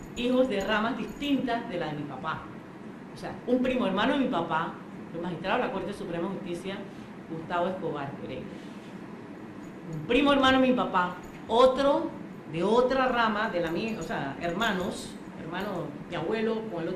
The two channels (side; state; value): both; identical; correlation 1.00